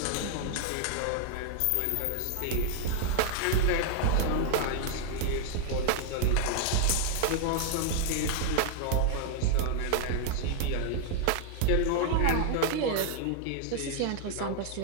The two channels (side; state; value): both; different; correlation 0.00